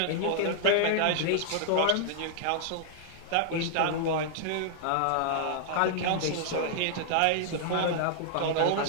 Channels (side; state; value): both; different; correlation -0.01